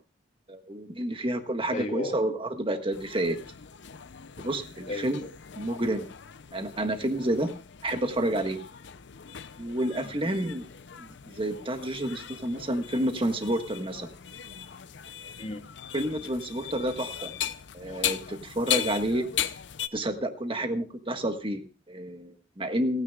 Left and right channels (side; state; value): both; normal; correlation 0.51